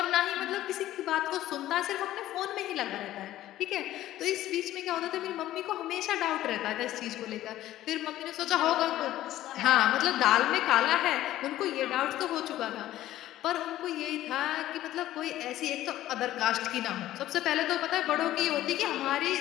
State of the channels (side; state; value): right; quieter; 14.1 dB